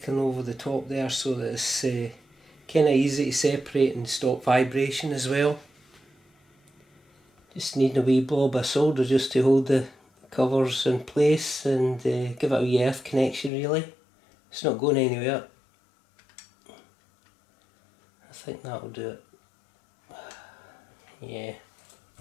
over the top there so that it's kind of easy to separate and stop vibration as well. Just need a wee blob of solder just to hold the covers in place and give it a wee earth connection really. It's not going anywhere. I think that'll do it. Yeah,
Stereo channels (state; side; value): drops out; right; at 13.5 s